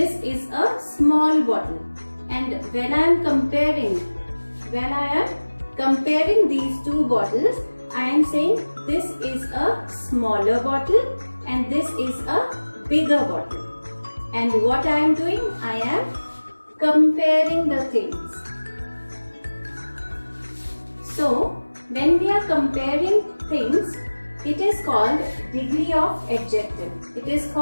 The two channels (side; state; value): both; inverted; correlation -1.00